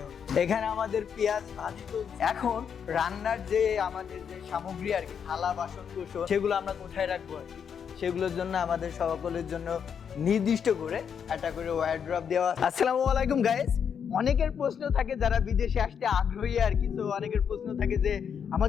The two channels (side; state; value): right; quieter; 7.4 dB